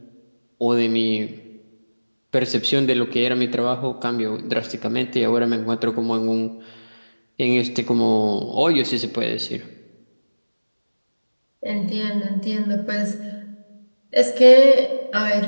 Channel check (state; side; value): inverted; both; correlation -1.00